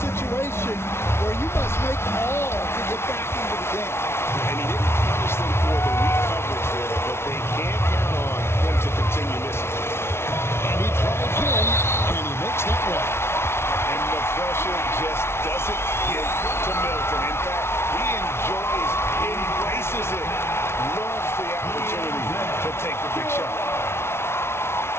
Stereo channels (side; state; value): right; late; 0.12 ms